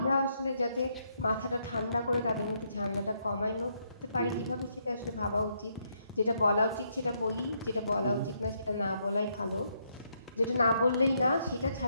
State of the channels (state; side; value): inverted; both; correlation -0.75